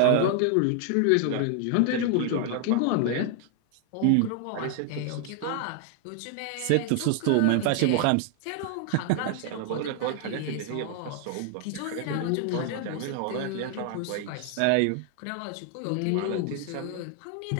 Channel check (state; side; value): different; both; correlation 0.00